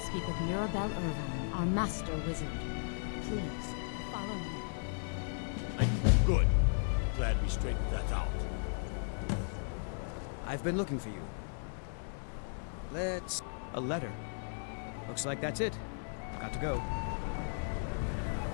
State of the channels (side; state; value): right; silent; digital silence